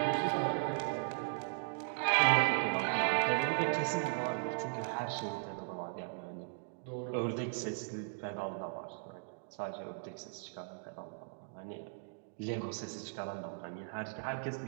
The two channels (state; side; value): silent; left; digital silence